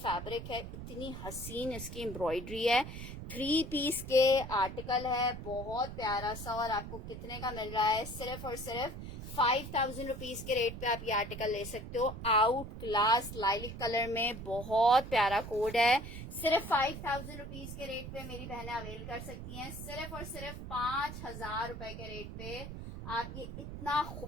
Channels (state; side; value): noise; right; rumble, 9 dB below the sound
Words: है, इतनी हसीन इसकी एम्ब्रॉयडरी है। 3 पीस के आर्टिकल है, बहुत प्यारा सा। और आपको कितने का मिल रहा है? सिर्फ और सिर्फ 5000 रुपीज के रेट पे आप ये आर्टिकल ले सकते हो। आउट क्लास लाइलिक कलर में, बहुत प्यारा कोड है। सिर्फ 5000 रुपीज के रेट पे मेरी बहनें अवेल कर सकती हैं। सिर्फ और सिर्फ 5000 रुपए के रेट पे आप ये इतना